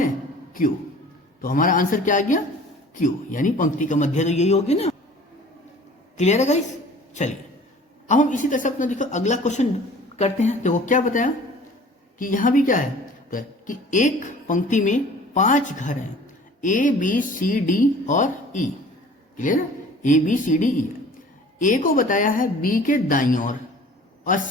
क्यू। तो हमारा आंसर क्या आ गया? क्यू, यानी पंक्ति का मध्य तो यही होगी ना। क्लियर है गाइस? चलिए अब हम इसी तरह से अपना देखो अगला क्वेश्चन करते हैं। देखो क्या बताया कि यहां भी क्या है तो कि एक पंक्ति में 5 घर हैं, ए बी सी डी और ई। क्लियर है? ए बी सी डी ई। ए को बताया है बी के दाईं ओर और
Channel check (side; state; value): both; normal; correlation 0.47